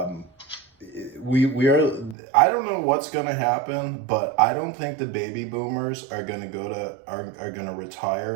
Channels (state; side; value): drops out; left; at 2.1 s